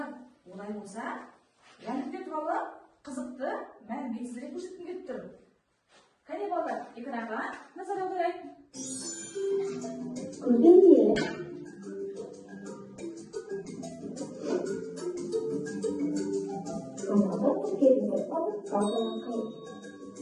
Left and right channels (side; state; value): both; identical; correlation 1.00